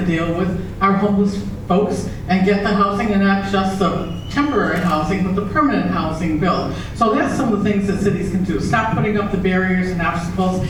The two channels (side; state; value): both; identical; correlation 1.00